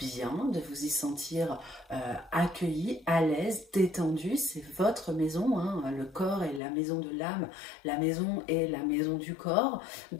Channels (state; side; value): drops out; right; at 6.6 s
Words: de vous y sentir accueilli, à l'aise, détendu. C'est votre maison, hein. Le corps est la maison de l'âme, la maison est la maison du corps.